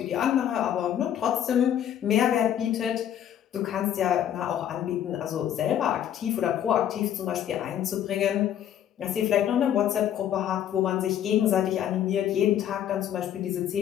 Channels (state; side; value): quieter; right; 10.4 dB